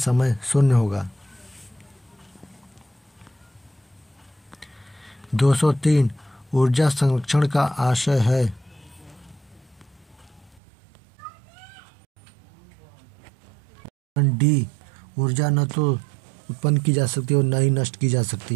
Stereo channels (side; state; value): left; drops out; at 10.6 s